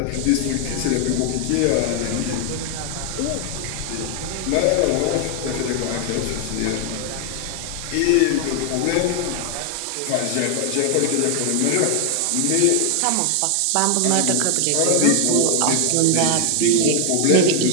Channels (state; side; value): different; both; correlation 0.00